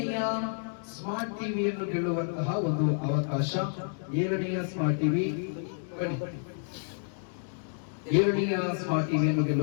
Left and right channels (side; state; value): right; silent; digital silence